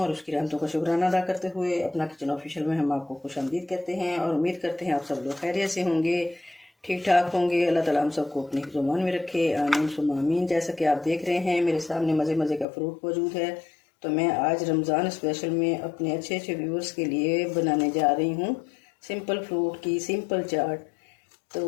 और उसकी रहमतों का शुक्राना अदा करते हुए अपना किचन ऑफिशियल में हम आपको खुशामदीद कहते हैं और उम्मीद करते हैं आप सब लोग खैरियत से होंगे, ठीक ठाक होंगे। अल्लाह ताला हम सबको अपनी ज़ुबान में रखे, आमीन सुम्मा आमीन। जैसा कि आप देख रहे हैं मेरे सामने मज़े मज़े का फ्रूट मौजूद है, तो मैं आज रमज़ान स्पेशल में अपने अच्छे अच्छे व्यूअर्स के लिए बनाने जा रही हूँ सिंपल फ्रूट की सिंपल चाट। तो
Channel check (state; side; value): drops out; right; at 12.7 s